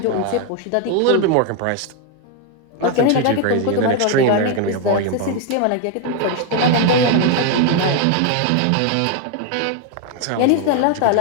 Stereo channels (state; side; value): different; both; correlation 0.01